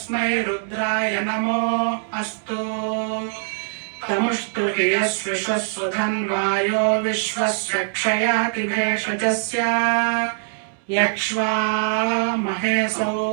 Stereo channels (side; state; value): left; silent; digital silence